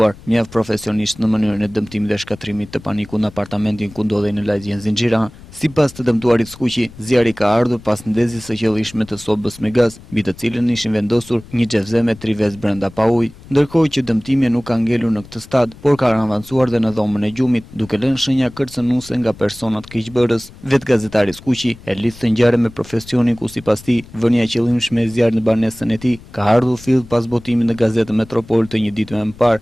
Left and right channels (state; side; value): noise; left; rumble, 20 dB below the sound